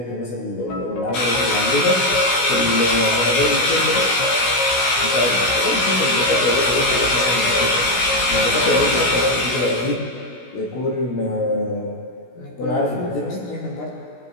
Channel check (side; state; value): right; late; 16 ms